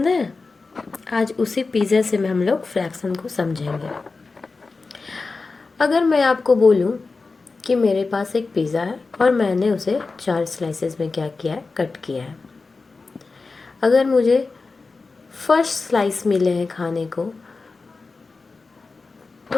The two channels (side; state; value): right; quieter; 4.0 dB